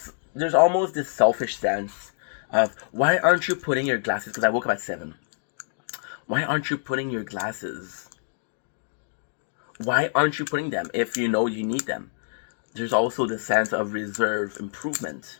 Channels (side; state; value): right; silent; digital silence